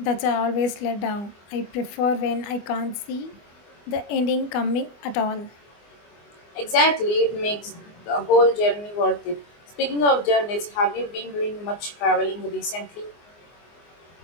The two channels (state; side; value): late; right; 24 ms